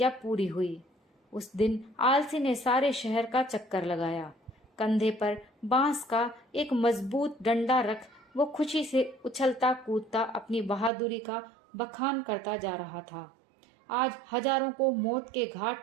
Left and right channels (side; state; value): left; drops out; at 10.9 s